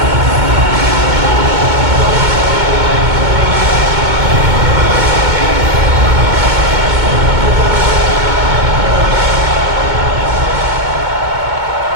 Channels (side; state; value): left; late; 2.2 ms